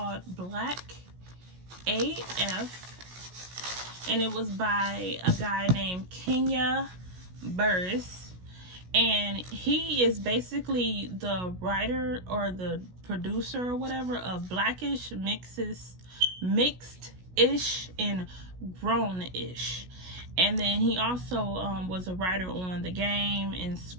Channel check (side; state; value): left; late; 16 ms